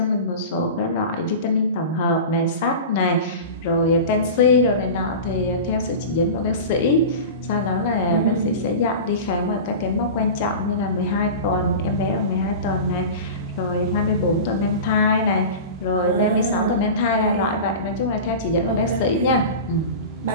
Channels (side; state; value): both; inverted; correlation -0.31